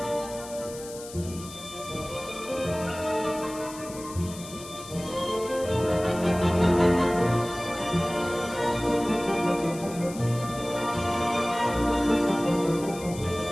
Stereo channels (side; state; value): left; noise; hiss, 15 dB below the sound